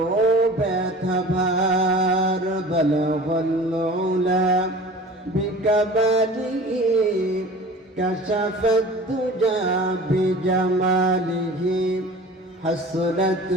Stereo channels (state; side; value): normal; both; correlation 0.41